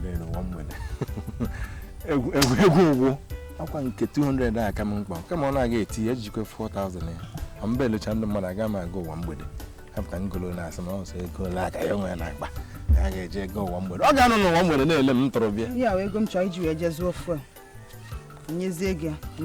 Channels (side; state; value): both; identical; correlation 1.00